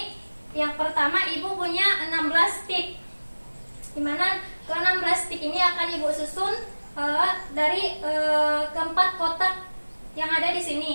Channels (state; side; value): inverted; both; correlation -1.00